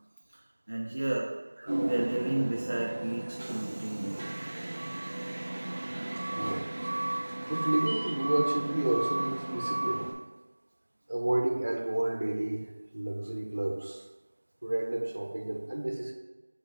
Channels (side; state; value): both; inverted; correlation -1.00